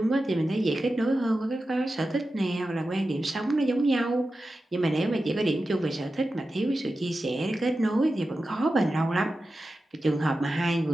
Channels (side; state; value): both; normal; correlation 0.92